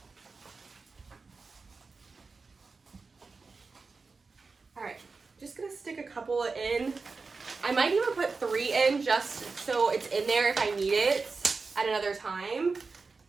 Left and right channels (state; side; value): quieter; left; 4.3 dB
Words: All right, just gonna stick a couple in. I might even put 3 in just so it's in there if I need it at another time,